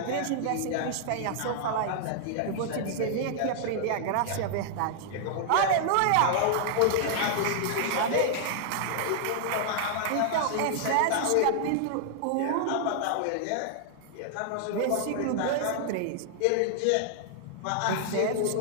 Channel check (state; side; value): different; both; correlation -0.01